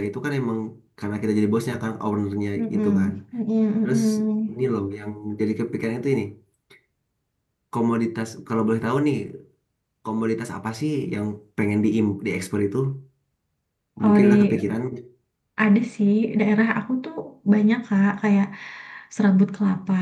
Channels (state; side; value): identical; both; correlation 1.00